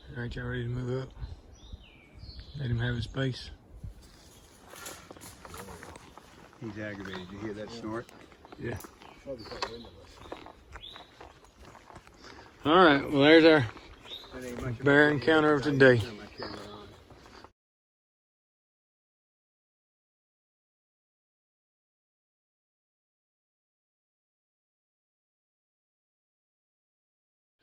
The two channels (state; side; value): identical; both; correlation 1.00